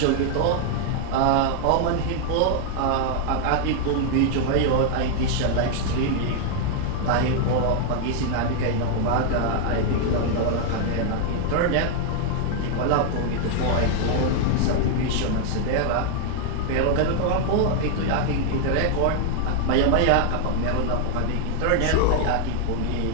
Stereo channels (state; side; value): different; both; correlation 0.00